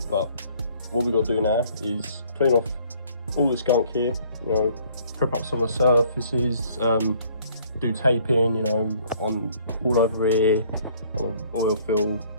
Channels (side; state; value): both; inverted; correlation -0.59